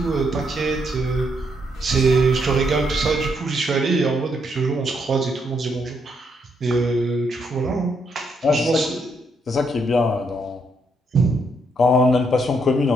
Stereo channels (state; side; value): normal; both; correlation 0.75